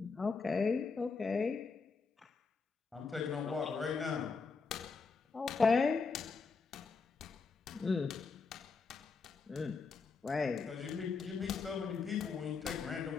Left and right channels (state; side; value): quieter; right; 4.8 dB